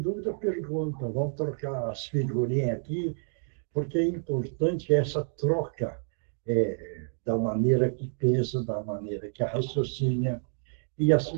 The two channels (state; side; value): silent; left; digital silence